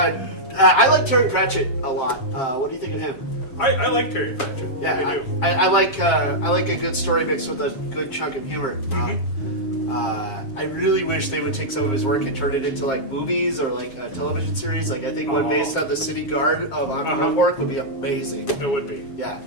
I like Terry Pratchett a lot. What do you think of him? I like Terry Pratchett. Yeah, I do. I like a good story mixed with a good chunk of humor. I really wish they would take some of his work and turn it into like movies or like a television series. Like I think one based on the City Guard of Ankh-Morpork would be amazing. It would be. Yeah.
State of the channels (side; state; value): right; late; 7.5 ms